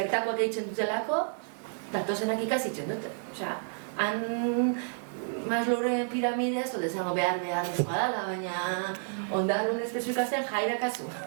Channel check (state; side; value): silent; left; 58 dB below the other